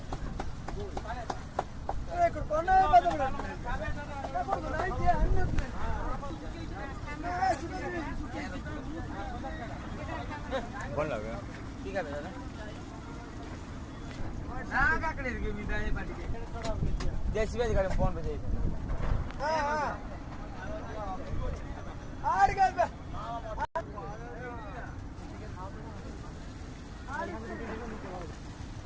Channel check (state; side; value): identical; both; correlation 1.00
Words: बोल लगा ठीक है भैया ना काकड़े के मी दाने पाटी के जैसी भी गाड़ी फोन पे जाइए हां हां आड़ गए बे